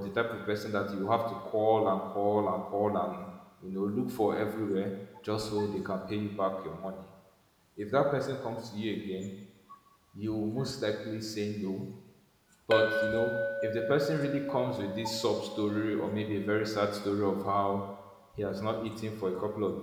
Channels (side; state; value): both; identical; correlation 1.00